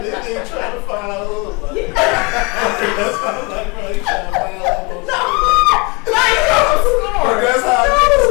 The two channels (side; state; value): right; quieter; 29.0 dB